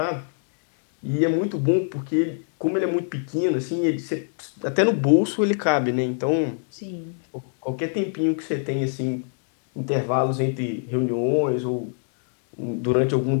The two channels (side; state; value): right; silent; digital silence